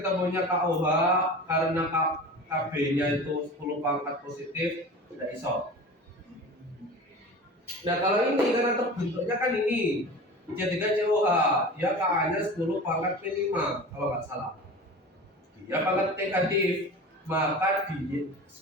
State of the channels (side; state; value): both; normal; correlation 0.35